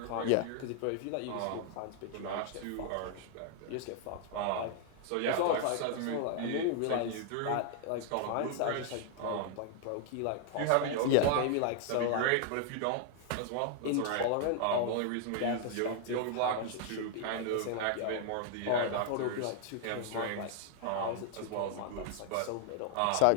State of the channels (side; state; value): both; different; correlation 0.00